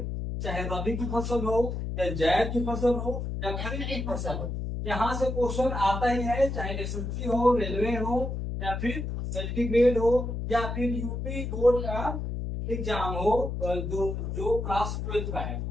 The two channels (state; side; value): noise; left; hum, 4 dB below the sound